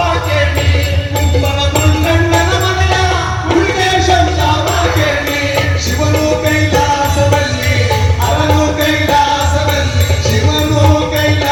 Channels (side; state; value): both; identical; correlation 1.00